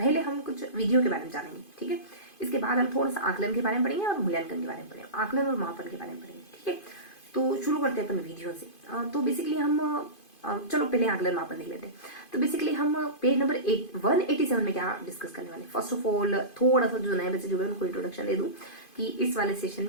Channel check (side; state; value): right; late; 2.5 ms